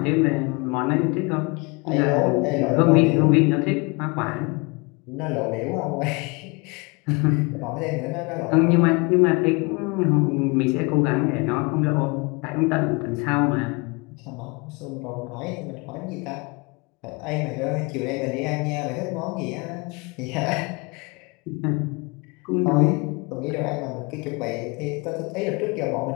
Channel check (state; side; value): quieter; right; 28.5 dB